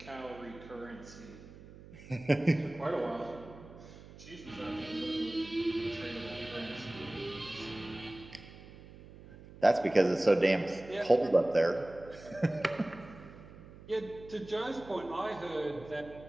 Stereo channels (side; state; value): right; noise; hum, 18 dB below the sound